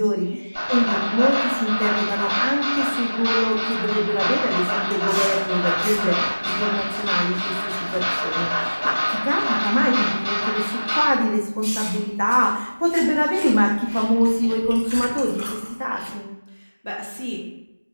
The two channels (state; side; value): inverted; both; correlation -1.00